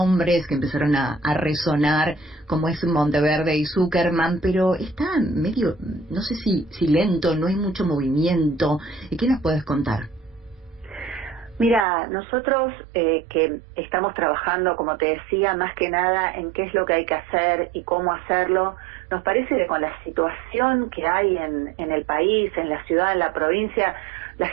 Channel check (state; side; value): drops out; left; at 11.9 s